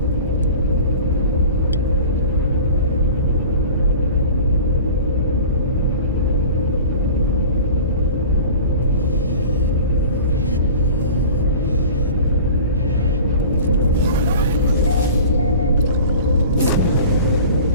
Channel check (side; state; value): both; inverted; correlation -0.39